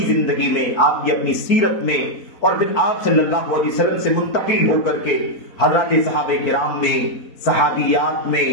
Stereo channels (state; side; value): late; right; 4.5 ms